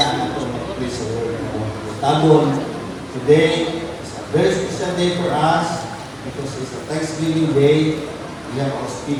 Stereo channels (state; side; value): identical; both; correlation 1.00